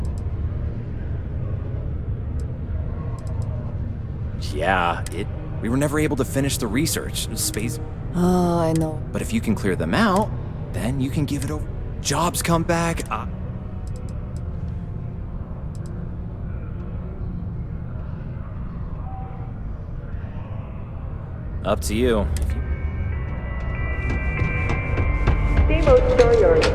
Yeah, we were never able to finish the research. Space. Oh, I know. But if you can clear them out, then you can give it over. Jobs come back. Up to you. Steamboat Storyard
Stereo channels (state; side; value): identical; both; correlation 1.00